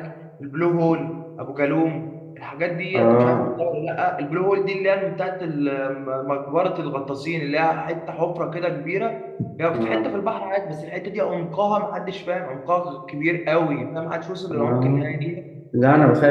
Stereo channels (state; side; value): identical; both; correlation 1.00